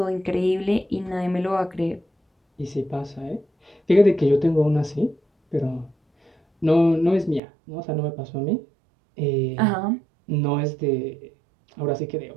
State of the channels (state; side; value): drops out; left; at 7.4 s